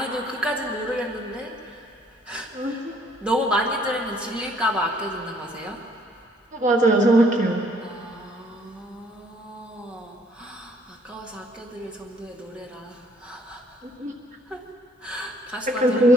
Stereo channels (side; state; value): both; normal; correlation 0.62